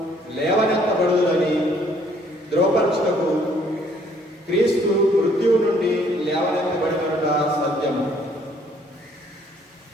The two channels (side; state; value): both; normal; correlation 0.63